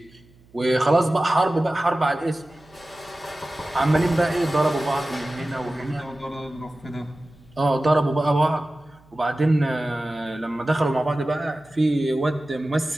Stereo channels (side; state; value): right; noise; hum, 29 dB below the sound